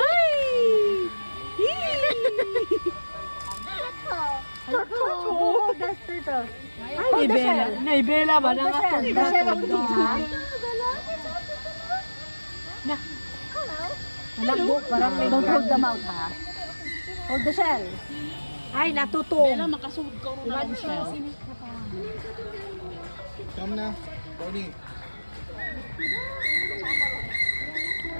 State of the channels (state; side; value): inverted; both; correlation -1.00